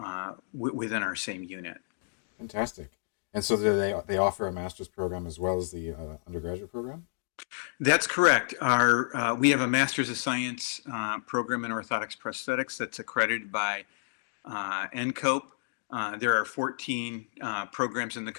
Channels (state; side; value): silent; right; digital silence